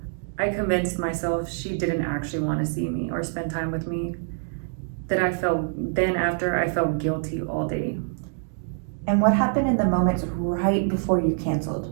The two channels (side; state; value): left; silent; digital silence